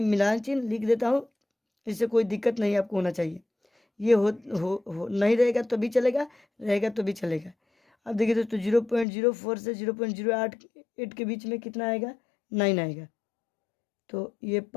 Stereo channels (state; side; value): drops out; right; at 9.1 s